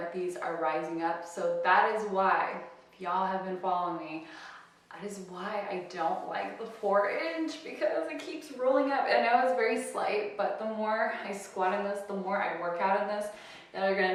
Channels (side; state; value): both; identical; correlation 1.00